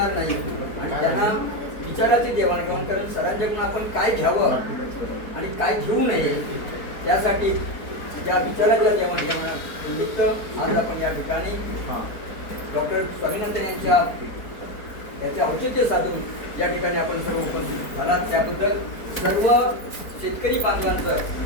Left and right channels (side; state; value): right; late; 4.5 ms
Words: नाही आणि त्यांना विचाराची देवाणघेवाण करून सरांच्याकडून आपण काय घ्यावं आणि काय घेऊ नये त्यासाठी त्या विचाराच्या देवाणघेवाण निमित्त आज आपण या ठिकाणी डॉक्टर स्वामीनाथन याचे औचित्य साधून या ठिकाणी आपण सर्व उपस्थित झालात त्याबद्दल सर्व शेतकरी बांधवांचं